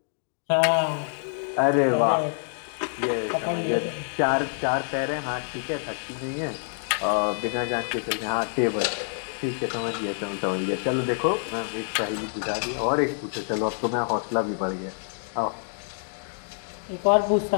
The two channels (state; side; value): silent; right; digital silence